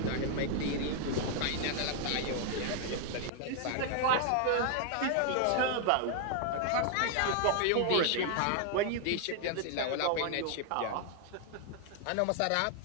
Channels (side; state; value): both; different; correlation 0.00